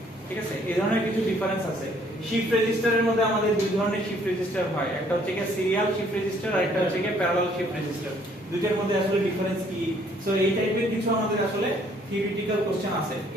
ঠিক আছে, এই ধরনের কিছু ডিফারেন্স আছে। শিফট রেজিস্টারের মধ্যে আমাদের দুই ধরনের শিফট রেজিস্টার হয়, একটা হচ্ছে কি সিরিয়াল শিফট রেজিস্টার আর একটা হচ্ছে কি প্যারালাল শিফট রেজিস্টার। দুইটার মধ্যে আসলে ডিফারেন্স কি, সো এই টাইপের কিছু আমাদের আসলে থিওরিটিক্যাল কোশ্চেন আছে।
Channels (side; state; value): both; normal; correlation 0.62